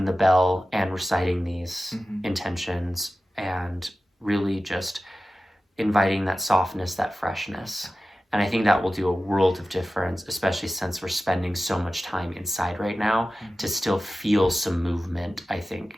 the bell and reciting these intentions and really just inviting that softness, that freshness. And I think that will do a world of difference, especially since we're spending so much time inside right now. To still feel some movement, I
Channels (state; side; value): normal; both; correlation 0.95